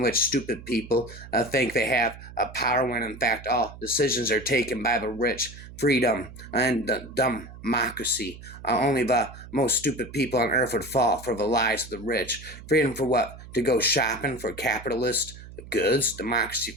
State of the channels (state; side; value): noise; right; hum, 16 dB below the sound